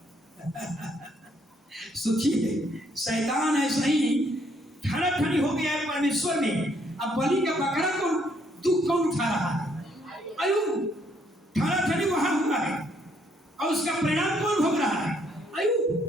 सोचिए, शैतान ऐसा ही ठना ठनी हो गया है परमेश्वर में। अब बलि का बकरा को दुख कौन उठा रहा है? अय्यूब। ठना ठनी वहां हुआ है और उसका परिणाम कौन भोग रहा है?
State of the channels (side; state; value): both; normal; correlation 0.69